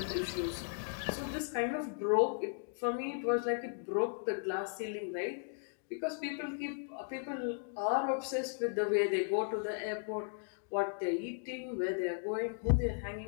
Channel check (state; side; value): silent; right; digital silence